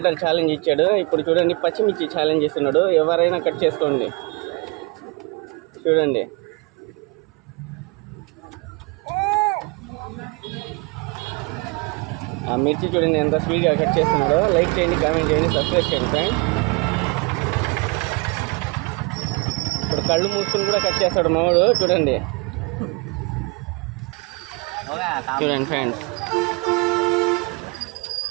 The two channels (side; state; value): left; quieter; 28.6 dB